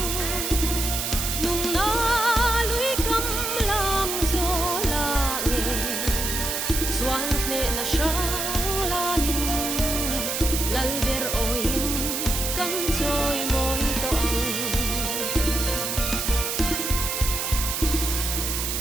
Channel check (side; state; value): right; noise; hiss, 1 dB below the sound